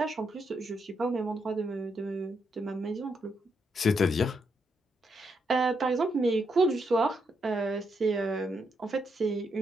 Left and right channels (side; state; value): both; normal; correlation 0.79